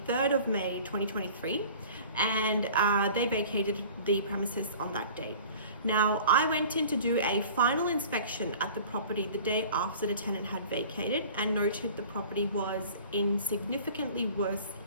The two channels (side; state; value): both; inverted; correlation -0.44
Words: 3rd of May 2023, and they vacated the premises on that date. Now, I went in to do a final inspection at the property the day after the tenant had vacated and noted the property was in significantly worse